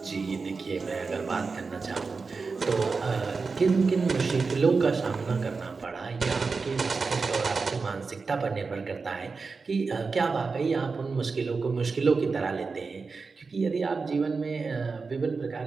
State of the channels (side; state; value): left; quieter; 4.5 dB